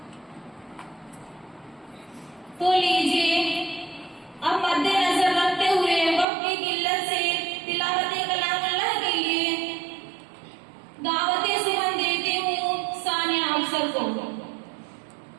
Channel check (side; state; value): left; drops out; at 6.2 s